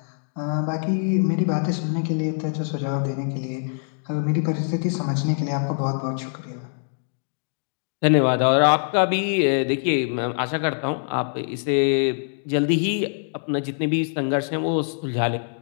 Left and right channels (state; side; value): silent; right; digital silence